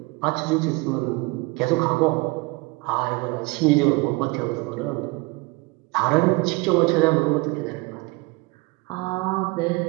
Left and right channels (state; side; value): quieter; left; 25.4 dB